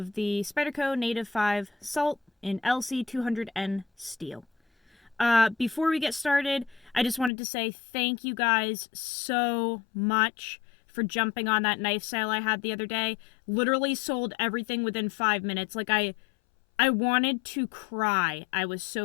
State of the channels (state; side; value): drops out; right; at 7.3 s